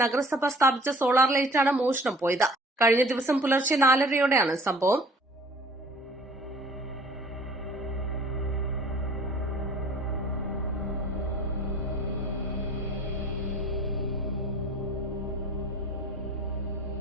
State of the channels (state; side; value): normal; both; correlation 0.49